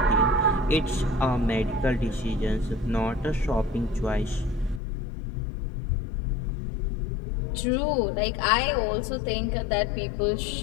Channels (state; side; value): drops out; right; at 4.8 s